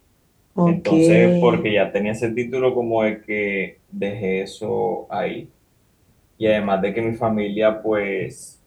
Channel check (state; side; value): identical; both; correlation 1.00